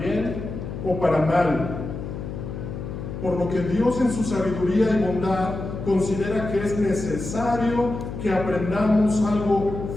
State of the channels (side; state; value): left; noise; hum, 7 dB below the sound